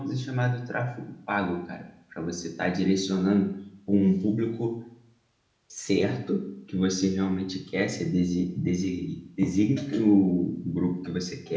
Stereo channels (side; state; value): both; identical; correlation 1.00